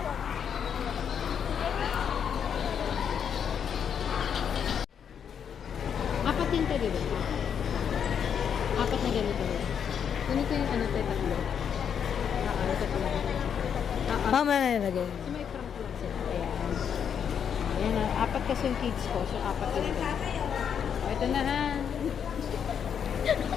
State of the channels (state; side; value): quieter; right; 7.8 dB